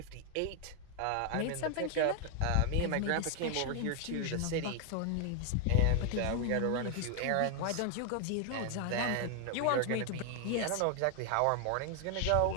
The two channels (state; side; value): different; both; correlation 0.00